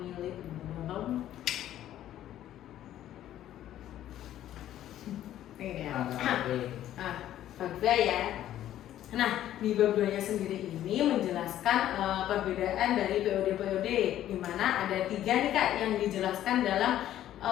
ya. Nah, di bab 2-nya sendiri ini menjelaskan perbedaan dari POD-POD, di mana ada 3 nih Kak yang dijelaskan dalam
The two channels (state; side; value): quieter; right; 12.3 dB